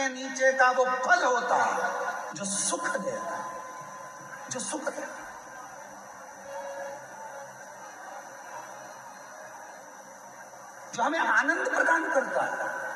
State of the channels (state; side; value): identical; both; correlation 1.00